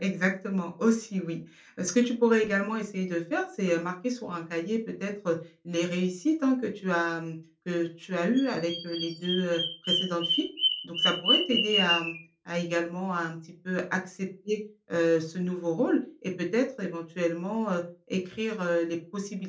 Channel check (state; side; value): identical; both; correlation 1.00